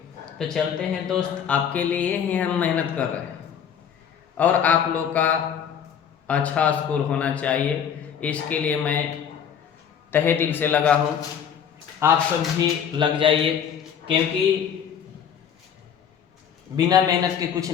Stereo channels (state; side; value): quieter; right; 8.1 dB